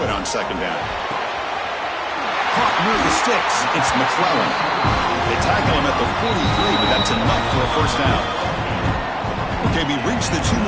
on 2nd down. Caught near the sticks. It's McClellan. They tackle him at the 43, but that's enough for a first down. Okay, we reached the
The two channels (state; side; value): identical; both; correlation 1.00